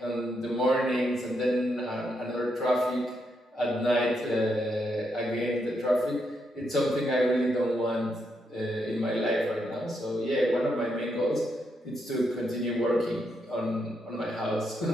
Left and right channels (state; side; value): normal; both; correlation 0.80